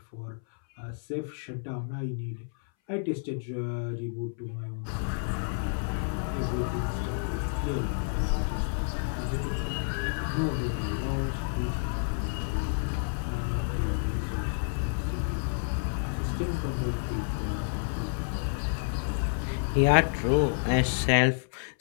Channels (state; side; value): silent; right; 58 dB below the other